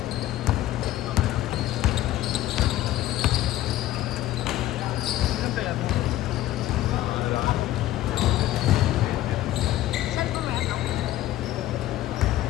Ilan kaya ito? Saan po meron?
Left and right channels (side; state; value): right; quieter; 14.3 dB